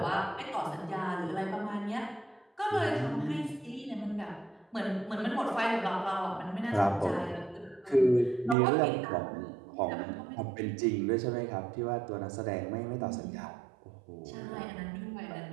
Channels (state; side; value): drops out; left; at 8.6 s